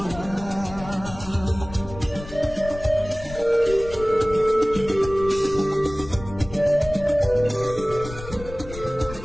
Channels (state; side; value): noise; left; rumble, 13 dB below the sound